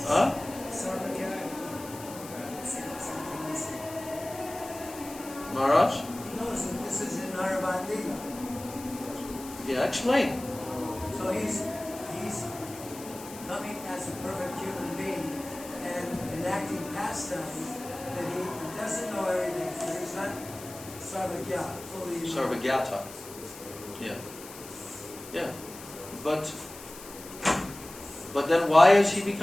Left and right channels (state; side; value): noise; left; hiss, 15 dB below the sound